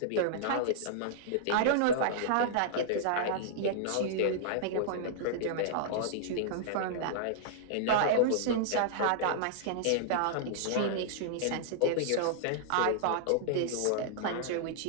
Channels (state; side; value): different; both; correlation -0.02